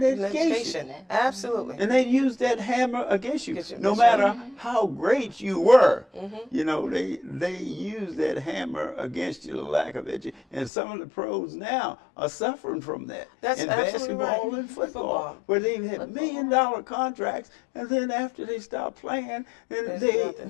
education. Absolutely. And they use that hammer against you. No matter how great you were, you know, they use that hammer against you, the lack of education. And some of the pros now are suffering from that. That's in absolutely basketball right. and football, where they've had $1 million contracts, and then after they stop playing, then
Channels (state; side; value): drops out; right; at 10.7 s